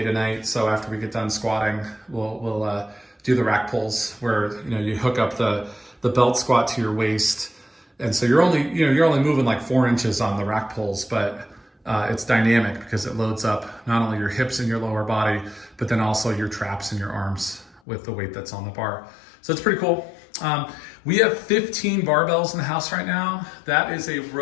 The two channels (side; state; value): right; drops out; at 17.8 s